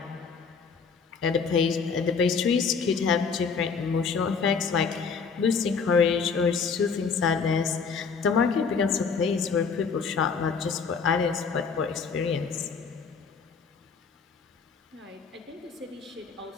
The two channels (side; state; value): right; quieter; 5.5 dB